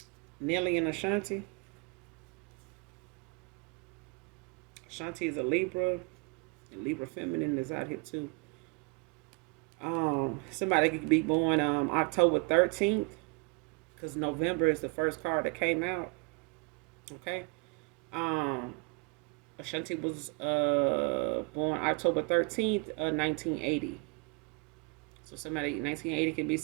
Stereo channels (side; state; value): left; quieter; 29.5 dB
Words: Nelly and Ashanti. Ashanti is a Libra. Libra feminine is out here too. Somebody could be born October 13th, because November is the first card that came out. Okay. Um, Ashanti was born October 13th, 1980. So somebody 1980 can be